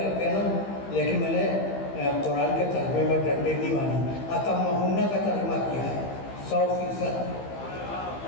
ہیں نا، لیکن میں نے قرآن کے ترجمے میں ڈنڈے نہیں مانی، اتمہنہ کا ترجمہ کیا ہے. 100%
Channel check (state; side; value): late; right; 15 ms